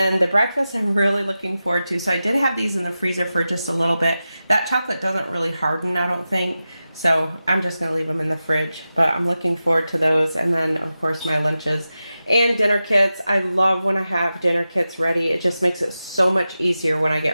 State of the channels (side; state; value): both; inverted; correlation -0.93